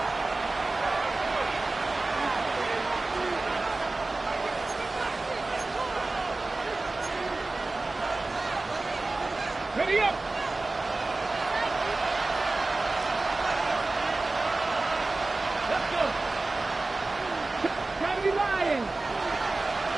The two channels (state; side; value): quieter; left; 3.2 dB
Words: Ready up! Let's go! Try to be lying!